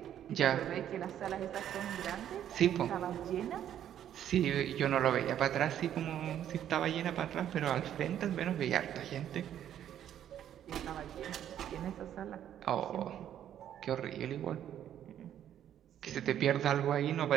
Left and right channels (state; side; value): quieter; left; 10.5 dB